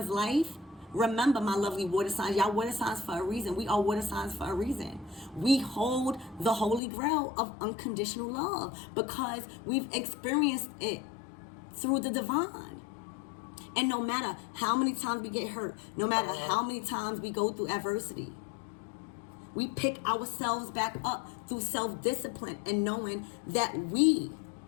life, remember, my lovely water signs, y'all water signs for a reason. We are water signs for a reason. We hold the holy grail of unconditional love because we've experienced it through the divine. And no matter how many times we get hurt, no matter how many times we go through adversity, we pick ourselves back up through self-discipline and knowing that we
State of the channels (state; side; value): drops out; right; at 6.8 s